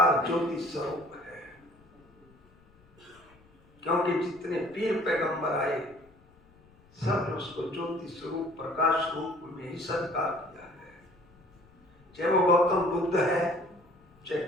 ज्योति स्वरूप है। क्योंकि जितने पीर पैगंबर आए सब ने उसको ज्योति स्वरूप प्रकाश रूप में ही सत्कार किया है। चाहे वो गौतम बुद्ध है, चाहे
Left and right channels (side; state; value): left; noise; rumble, 29 dB below the sound